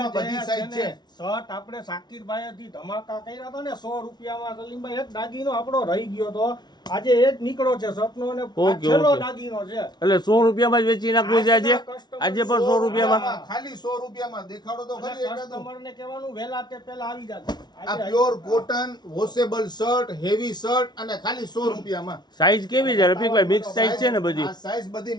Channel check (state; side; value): late; right; 0.20 ms